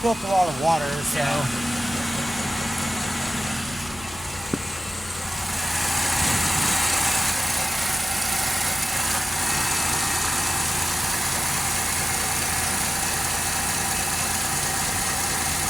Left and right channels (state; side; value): noise; left; hum, 19 dB below the sound